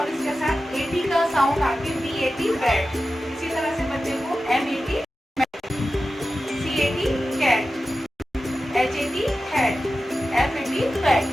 इसके साथ AT का साउंड आके BAT बैट। इसी तरह से बच्चे को MAT CAT cat, HAT hat, FAT fat.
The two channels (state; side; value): normal; both; correlation 0.93